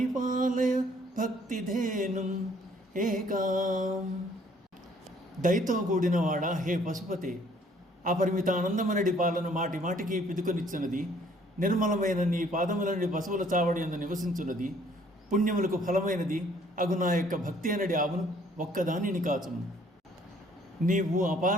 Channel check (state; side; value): normal; both; correlation 0.61